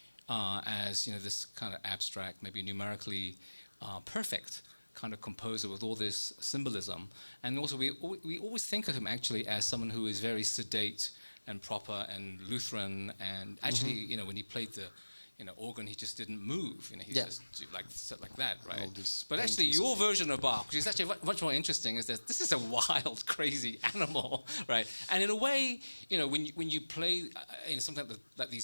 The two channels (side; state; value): both; inverted; correlation -1.00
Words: as, you know, this kind of abstract, maybe numerically perfect kind of composer with all this symbolism. And also we always think of him actually as someone who is very sedate and proper and Lutheran, and actually, you know, when he played the organ, he just didn't move. You know, he just sat like that, right? But actually, your version of Bach, which is actually much more interesting, is that this is a wild, crazy animal, right? And in a way, you know, when you play something like these